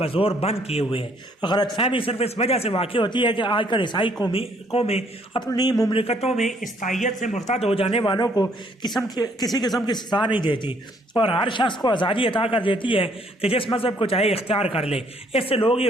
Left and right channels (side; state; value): both; normal; correlation 0.65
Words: بند کیے ہوئے ہے۔ غلط فہمی صرف اس وجہ سے واقع ہوتی ہے کہ آج کل عیسائی قومیں اپنی مملکتوں میں عیسائیت سے مرتد ہو جانے والوں کو کسی قسم کی سزا نہیں دیتی اور ہر شخص کو آزادی عطا کر دیتی ہے کہ جس مذہب کو چاہے اختیار کر لے۔ اس سے لوگ یہ